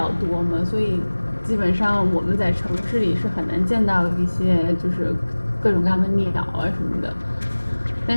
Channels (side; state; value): both; inverted; correlation -1.00